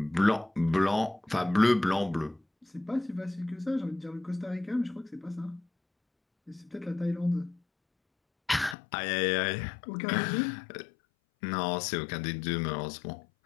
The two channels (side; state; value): right; drops out; at 8.8 s